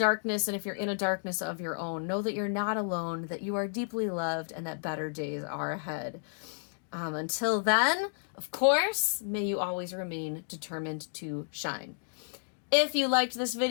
and if you're in a darkness of your own, know that you're not alone, that you are deeply loved, and that better days are ahead. Until then, of course, may you always remain determined to shine. If you liked this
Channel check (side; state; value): right; silent; digital silence